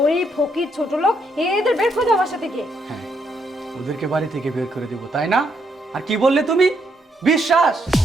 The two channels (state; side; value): normal; both; correlation 0.75